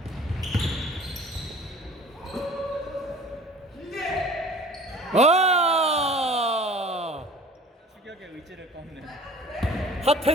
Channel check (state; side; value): normal; both; correlation 0.45